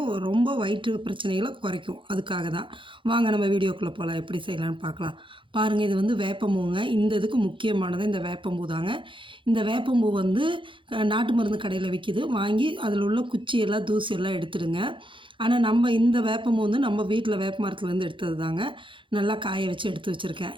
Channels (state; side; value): late; left; 0.24 ms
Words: ரொம்ப வயிற்று பிரச்சனைகளை குறைக்கும். அதுக்காக தான். வாங்க நம்ம வீடியோக்குள்ளே போகலாம், எப்படி செய்யலான்னு பார்க்கலாம். பாருங்கள், இது வேப்பம்பூங்க. இந்த இதுக்கு முக்கியமானது இந்த வேப்பம்பூ தாங்க. இந்த வேப்பம்பூ நாட்டு மருந்து கடையில் விற்கிது. வாங்கி அதில் உள்ள குச்சியெல்லாம் தூசியெல்லாம் எடுத்துடுங்க. ஆனால் நம்ம இந்த வேப்பம்பூ நம்ம வீட்டில் வேப்ப மரத்துலேருந்து எடுத்தது தாங்க. நல்லா காய வச்சு எடுத்து வச்சுருக்கேன்.